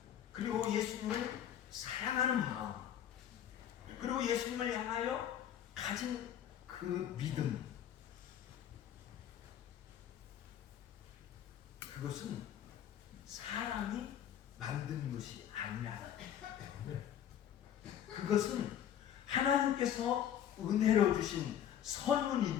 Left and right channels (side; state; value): right; quieter; 10.0 dB